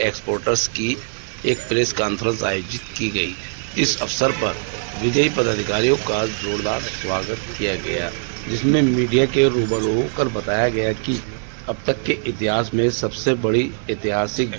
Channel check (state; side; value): silent; left; digital silence